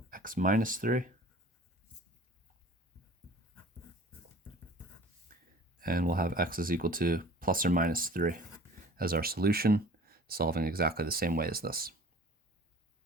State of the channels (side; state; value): both; normal; correlation 0.46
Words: x minus 3. And we'll have x is equal to plus or minus 3 as our solution, solving exactly the same way as this.